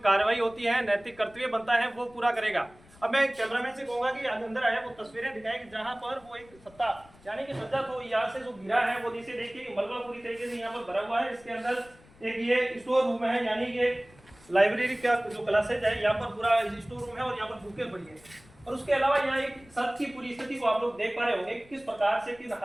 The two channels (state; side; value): noise; left; rumble, 25 dB below the sound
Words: कार्रवाई होती है, नैतिक कर्तव्य बनता है, वो पूरा करेगा। अब मैं कैमरामैन से कहूंगा कि अंदर आया वो तस्वीरें दिखाए कि जहां पर वो एक सत्ता यानी कि सज्जा तो यहाँ से जो गिरा है वो नीचे देखिए मलबा पूरी तरीके से यहाँ पर भरा हुआ है। इसके अंदर एक ये स्टोर रूम है, यानी कि लाइब्रेरी का जो क्लासेज है, यहाँ पर पूरा स्टोर रूम है और यहाँ पर बुकें पड़ी है। और उसके अलावा यहाँ एक सड़क की पूरी स्थिति को आप लोग देख पा रहे होंगे किस प्रकार से, किस